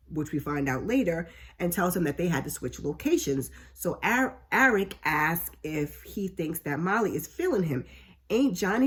which we find out later, and tells him that they had to switch locations. So Eric asks if he thinks that Molly is feeling him. Ain't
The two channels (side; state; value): both; identical; correlation 1.00